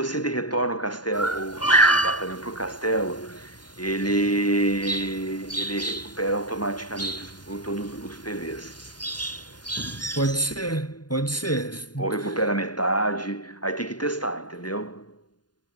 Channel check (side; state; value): right; late; 0.70 ms